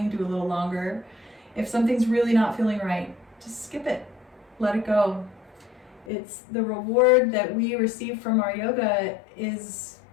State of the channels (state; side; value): drops out; right; at 6.1 s